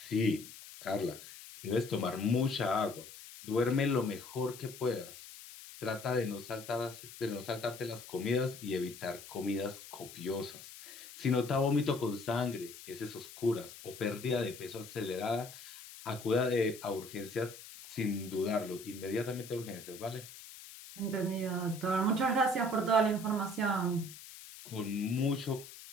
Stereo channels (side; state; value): left; noise; hiss, 15 dB below the sound